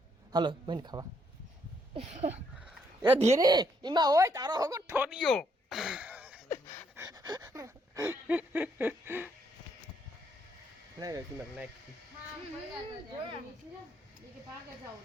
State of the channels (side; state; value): both; normal; correlation 0.72